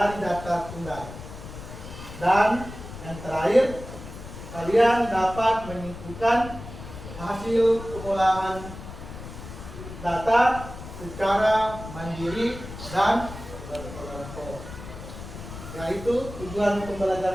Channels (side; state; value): left; noise; rumble, 12 dB below the sound